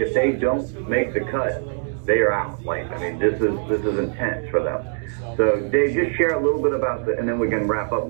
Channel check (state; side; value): silent; left; 57 dB below the other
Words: they don't make the cut, they are out. Like, I mean, this is intense for them. So Dave, just share a little bit about and then we can wrap up and